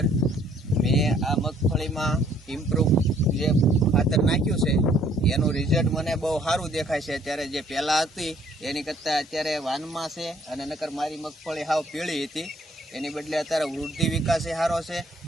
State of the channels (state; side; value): normal; both; correlation 0.62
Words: મેં આ મગફળીમાં ઇમ્પ્રુવ જે ખાતર નાખ્યું છે એનું રિઝલ્ટ મને બહુ સારું દેખાય છે. અત્યારે જે પહેલાં હતી એની કરતાં અત્યારે વાનમાં છે, અને નકર મારી મગફળી હાવ પીળી હતી, એની બદલે અત્યારે વૃદ્ધિ વિકાસે સારો છે